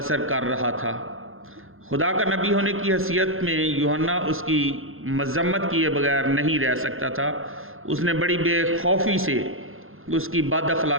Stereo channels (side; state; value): left; late; 0.60 ms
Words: कर रहा था। खुदा का नबी होने की हैसियत में यूहन्ना उसकी मज़म्मत किए बगैर नहीं रह सकता था। उसने बड़ी बेखौफी से उसकी बद